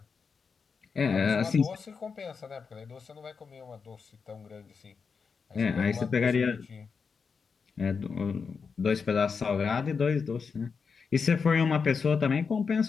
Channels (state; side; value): quieter; right; 5.5 dB